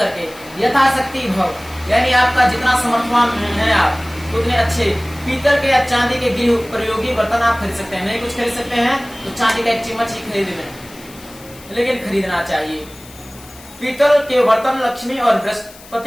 यथाशक्ति भाव, यानी आपका जितना समर्थवान है आप उतने अच्छे पीतल के या चांदी के गृह उपयोगी बर्तन आप खरीद सकते हैं। नहीं कुछ खरीद सकते हैं तो चांदी का एक चम्मच ही खरीद लें, लेकिन खरीदना चाहिए। पीतल के बर्तन लक्ष्मी और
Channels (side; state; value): left; noise; hiss, 21 dB below the sound